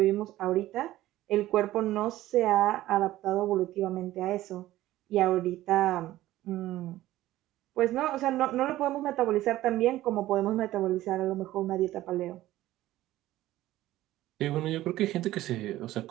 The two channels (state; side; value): quieter; left; 15.4 dB